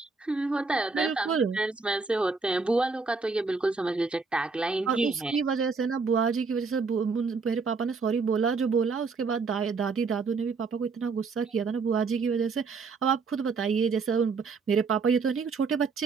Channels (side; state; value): left; quieter; 4.7 dB